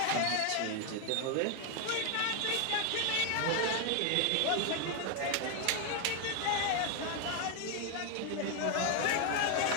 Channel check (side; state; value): both; different; correlation 0.01